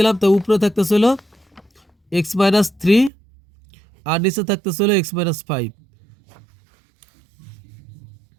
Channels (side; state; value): left; drops out; at 3.1 s